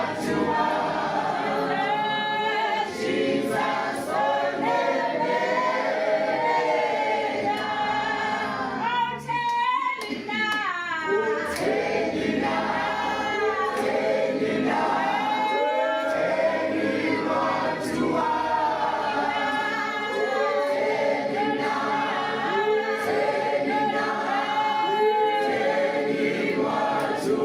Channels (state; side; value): identical; both; correlation 1.00